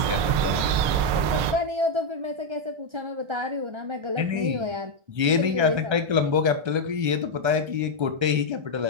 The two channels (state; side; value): late; left; 1.3 ms